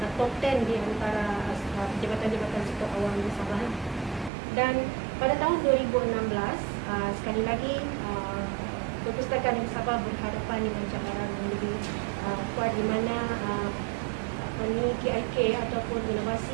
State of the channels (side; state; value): left; drops out; at 4.3 s